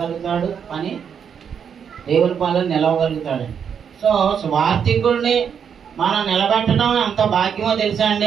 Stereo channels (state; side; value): quieter; left; 7.5 dB